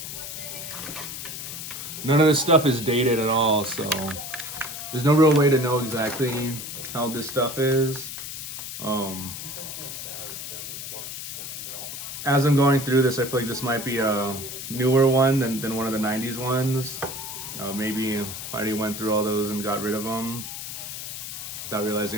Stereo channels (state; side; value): noise; left; hiss, 8 dB below the sound